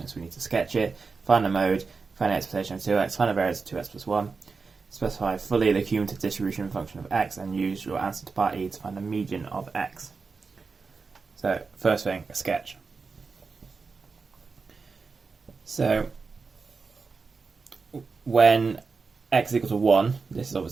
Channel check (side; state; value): left; quieter; 4.6 dB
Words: we need to sketch it, find the mode, find the expectation of 2x, find the variance of 2x plus 1, specify fully the cumulative distribution function of x, and use your answer to part E to find the median of x. So first thing, a sketch. So when x is equal to 1, this is